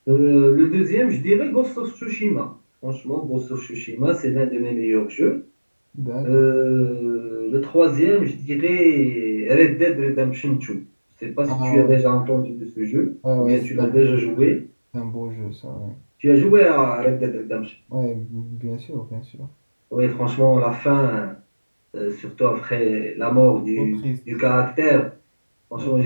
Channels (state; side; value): inverted; both; correlation -1.00